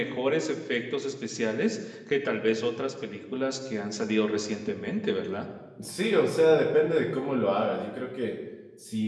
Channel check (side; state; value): both; identical; correlation 1.00